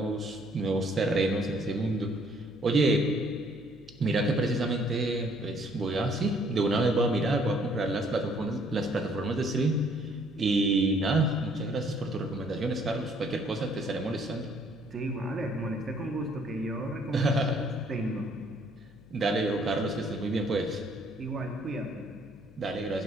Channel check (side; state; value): left; noise; hum, 24 dB below the sound